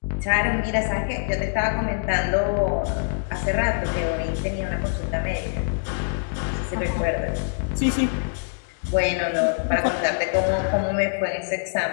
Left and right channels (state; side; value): silent; right; digital silence